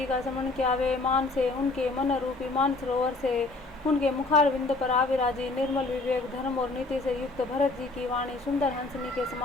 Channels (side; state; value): right; quieter; 3.3 dB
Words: का स्मरण किया। वे मान से उनके मन रूपी मान सरोवर से उनके मुखार बिंद पर आविराजी। निर्मल विवेक धर्म और नीति से युक्त भरत जी की वाणी सुंदर हंसनी के